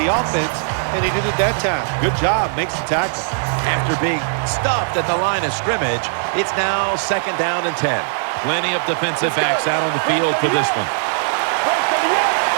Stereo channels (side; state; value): left; silent; digital silence